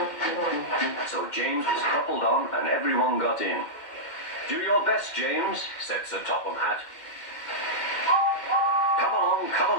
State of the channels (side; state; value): right; late; 2.1 ms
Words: So James was coupled on and everyone got in. Do your best, James, said Sir Topham Hatt. Come